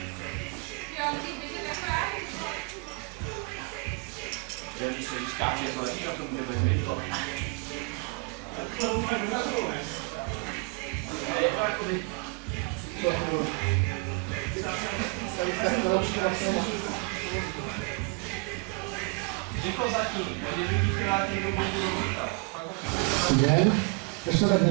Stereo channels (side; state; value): left; quieter; 30.2 dB